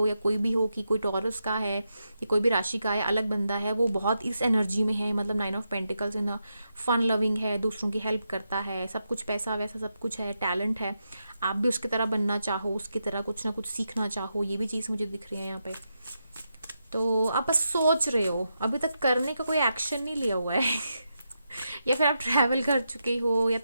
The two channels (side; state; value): both; inverted; correlation -0.85